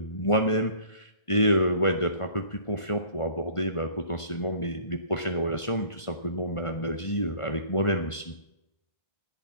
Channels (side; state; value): right; late; 1.5 ms